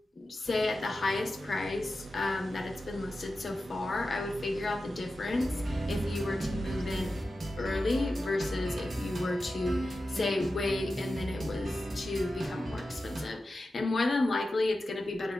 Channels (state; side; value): normal; both; correlation 0.93